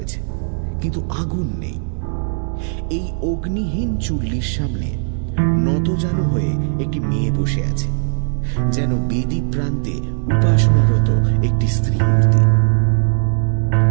কিন্তু আগুন নেই। এই অগ্নিহীন চুল্লির সামনে নতজানু হয়ে একটি মেয়ে বসে আছে, যেন বেদি প্রান্তে উপাসনারত একটি স্ত্রী মূর্তি।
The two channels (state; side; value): silent; left; 63 dB below the other